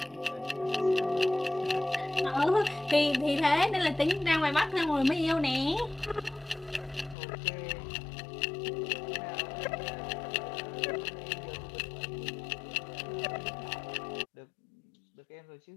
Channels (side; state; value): right; drops out; at 7.2 s